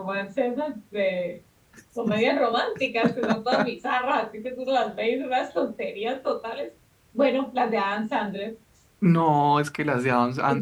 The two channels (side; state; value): both; identical; correlation 1.00